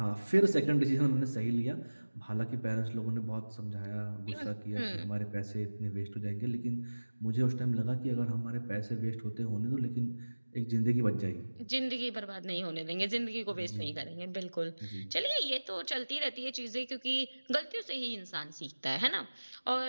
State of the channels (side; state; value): both; inverted; correlation -1.00